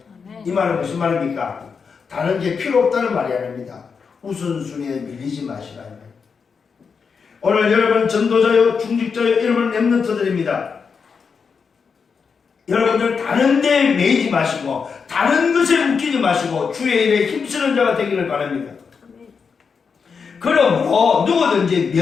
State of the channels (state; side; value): quieter; right; 5.7 dB